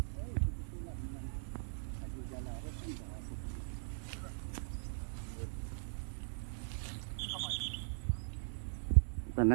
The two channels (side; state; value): left; silent; 51 dB below the other